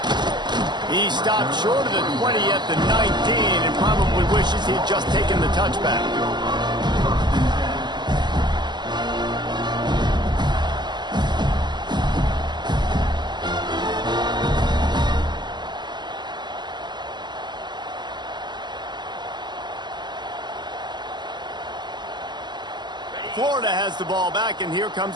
He stopped short of the 20 at the 19 and probably wishes he'd just taken the touchback. Florida has the ball back, and here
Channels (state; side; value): late; left; 0.21 ms